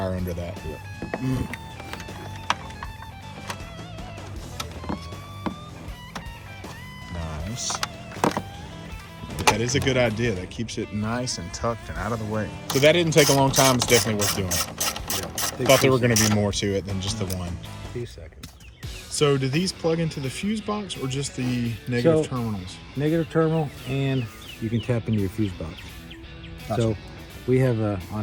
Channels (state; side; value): identical; both; correlation 1.00